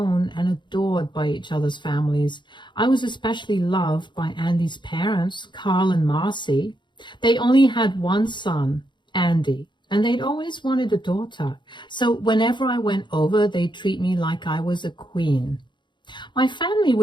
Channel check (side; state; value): right; late; 0.22 ms